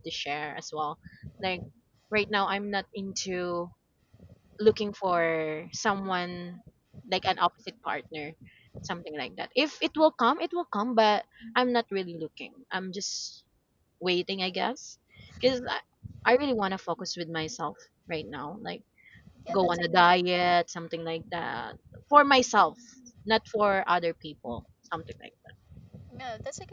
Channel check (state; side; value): identical; both; correlation 1.00